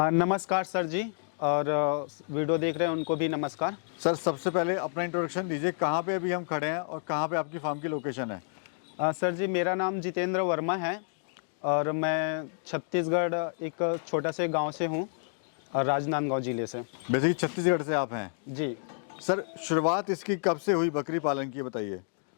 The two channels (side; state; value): right; silent; digital silence